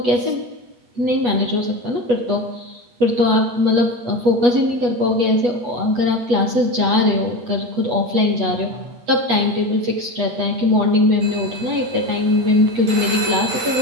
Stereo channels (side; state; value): left; late; 8.2 ms